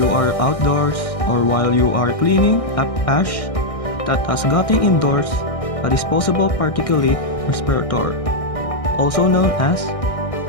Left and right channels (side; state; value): right; late; 1.6 ms